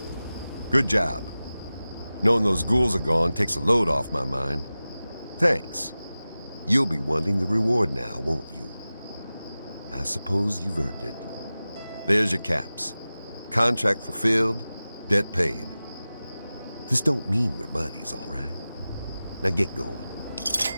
Good job. Knowing those ghouls are gone takes a load off my mind. Thanks. You'll be wanting the reward now, won't you? I suppose you've earned it. There's your caps. Contract fulfilled, debt paid. This don't mean we're buddies, all right? Now get going.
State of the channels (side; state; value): both; inverted; correlation -0.96